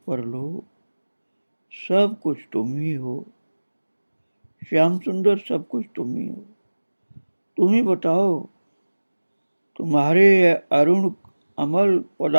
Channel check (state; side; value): inverted; both; correlation -1.00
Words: परलोक सब कुछ तुम ही हो श्याम सुंदर, सब कुछ तुम ही हो। तुम ही बताओ, तुम्हारे अरुण अमल